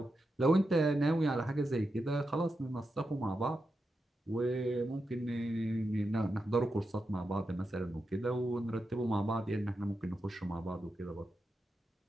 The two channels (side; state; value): both; normal; correlation 0.88